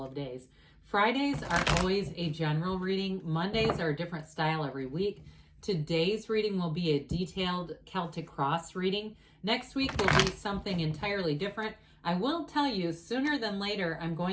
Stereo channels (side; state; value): both; identical; correlation 1.00